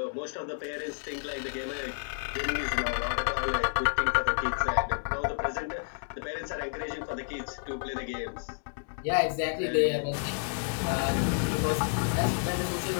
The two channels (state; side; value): silent; right; digital silence